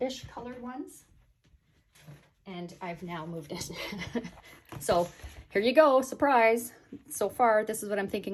colored ones, and I've now moved it. So here you go, surprise. So far, this is what I'm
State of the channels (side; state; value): both; identical; correlation 1.00